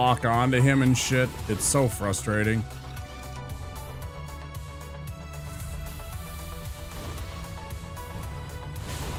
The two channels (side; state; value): both; identical; correlation 1.00